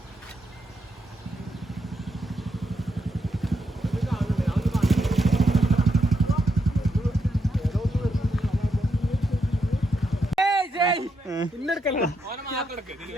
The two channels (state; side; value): normal; both; correlation 0.81